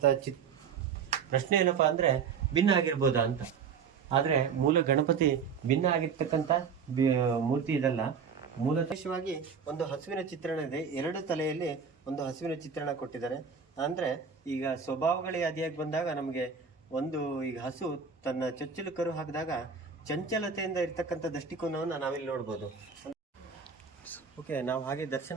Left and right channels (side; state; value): left; quieter; 6.2 dB